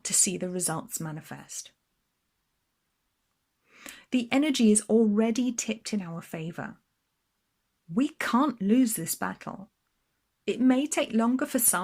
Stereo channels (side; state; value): both; identical; correlation 1.00